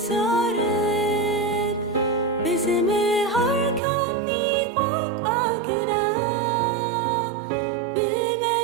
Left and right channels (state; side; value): drops out; left; at 3.8 s